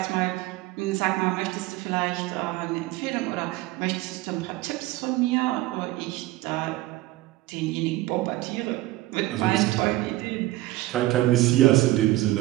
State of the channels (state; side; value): quieter; left; 17.7 dB